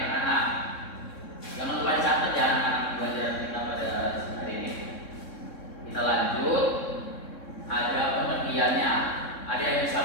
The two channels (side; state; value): right; late; 3.6 ms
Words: anak-anak. Jangan lupa dicatat ya anak-anak pelajaran kita pada hari ini. Kita lanjut. Ada pengertiannya. Ada yang